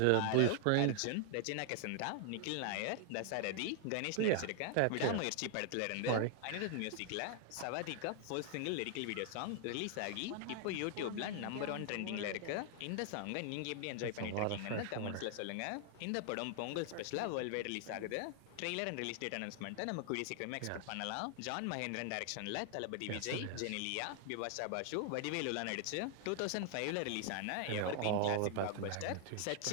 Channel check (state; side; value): different; both; correlation 0.00